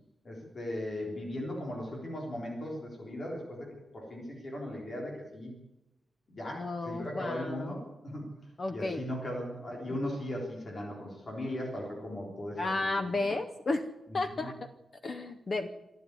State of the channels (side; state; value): both; normal; correlation 0.88